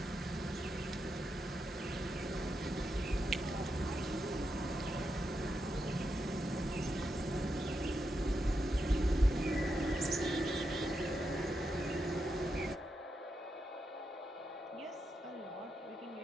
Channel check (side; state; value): both; normal; correlation 0.85